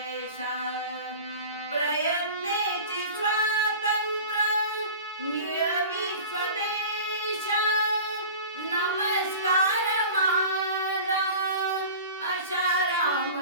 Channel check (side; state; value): both; inverted; correlation -0.38